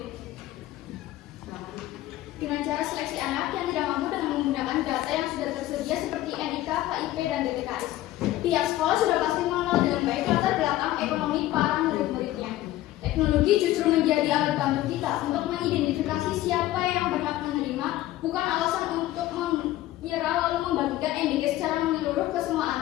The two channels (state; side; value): quieter; right; 15.2 dB